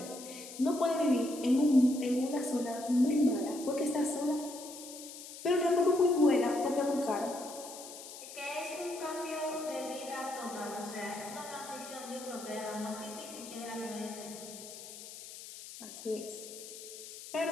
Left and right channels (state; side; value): noise; left; hiss, 13 dB below the sound